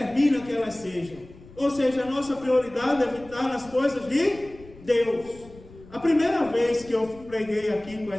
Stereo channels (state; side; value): noise; left; rumble, 21 dB below the sound